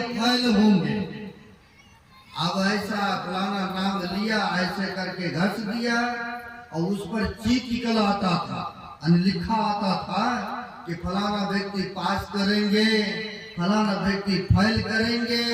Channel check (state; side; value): identical; both; correlation 1.00